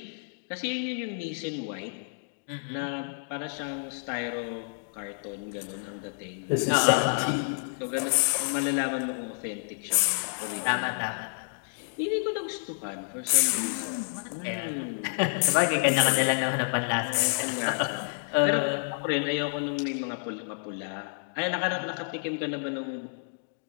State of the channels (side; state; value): right; silent; digital silence